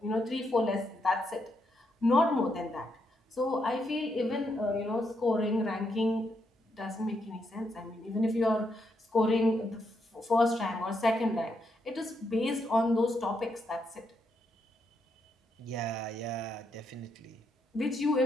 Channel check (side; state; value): both; normal; correlation 0.79